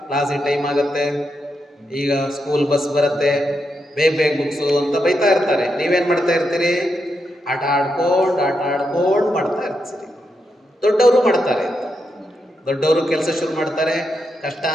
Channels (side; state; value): both; normal; correlation 0.84